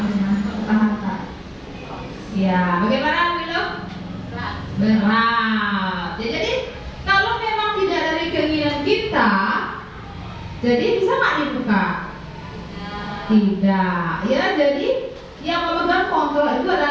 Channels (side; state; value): both; identical; correlation 1.00